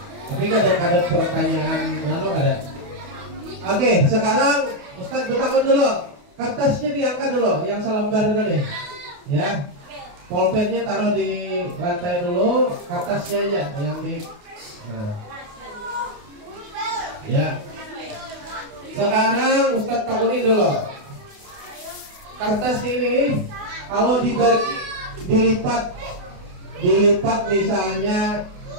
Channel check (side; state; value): left; late; 28 ms